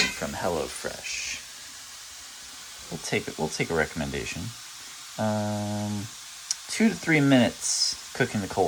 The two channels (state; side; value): identical; both; correlation 1.00